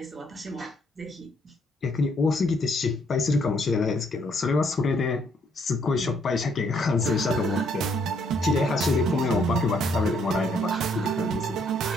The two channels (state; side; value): normal; both; correlation 0.69